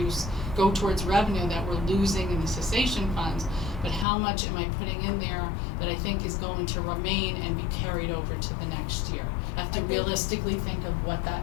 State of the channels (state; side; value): drops out; right; at 4.0 s